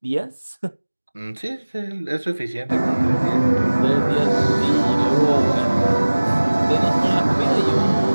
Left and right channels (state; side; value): inverted; both; correlation -1.00